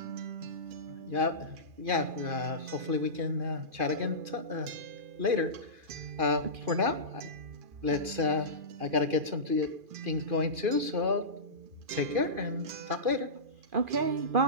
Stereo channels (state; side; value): late; left; 2.4 ms